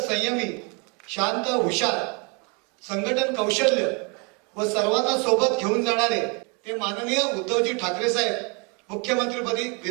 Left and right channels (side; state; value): left; quieter; 32.5 dB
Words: शांत, हुशार, संघटन कौशल्य व सर्वांना सोबत घेऊन जाणारे ते माननीय उद्धवजी ठाकरे साहेब मुख्यमंत्रीपदी